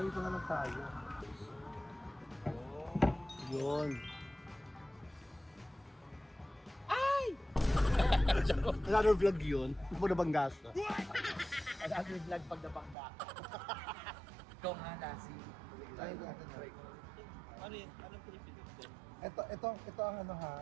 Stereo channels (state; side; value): drops out; left; at 13.0 s